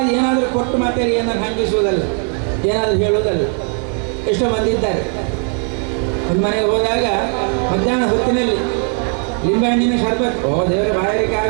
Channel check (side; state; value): left; quieter; 38.8 dB